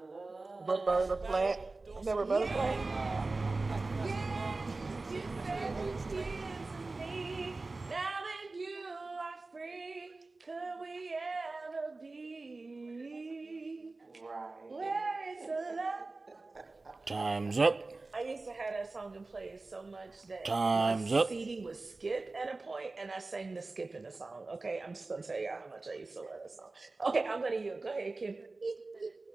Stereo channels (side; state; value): left; quieter; 3.4 dB